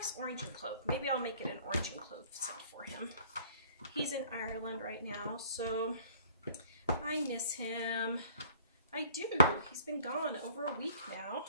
orange and clove. Maybe I'll make it an orange and clove scent for him. He's in Ireland right now, so I miss him. I do. He's been gone over a week now.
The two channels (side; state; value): both; inverted; correlation -0.55